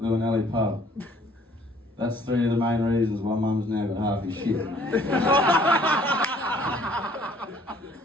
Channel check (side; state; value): both; normal; correlation 0.59